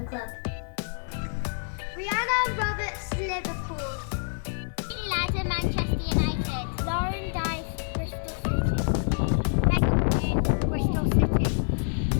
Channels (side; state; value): right; silent; 60 dB below the other